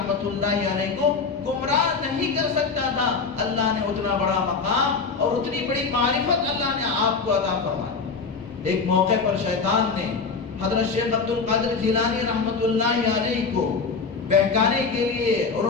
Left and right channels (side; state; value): right; quieter; 4.8 dB